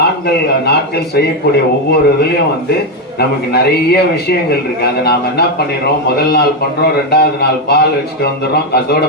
நாட்கள் செய்யக்கூடிய ஒவ்வொரு இதுலயும் நமக்கு நிறைய விஷயங்கள் இருக்கு. அதை நாம என்ன பண்ணிடுறோம், முதல் நாள் பண்றோம், 2வது நாள் பால் வச்சுட்டு வந்துடுறோம், அதோட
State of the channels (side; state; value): both; normal; correlation 0.06